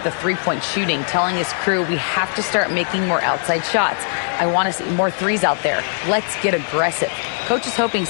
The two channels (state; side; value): silent; right; digital silence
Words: the three-point shooting, telling his crew we have to start making more outside shots. I want to see more threes out there. Let's get aggressive. Coach is hoping